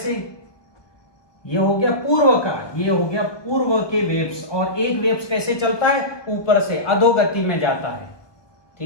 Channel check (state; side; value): late; right; 1.2 ms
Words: ये हो गया पूर्व का, ये हो गया पूर्व के वेव्स, और एक वेव्स कैसे चलता है ऊपर से अधोगति में जाता है।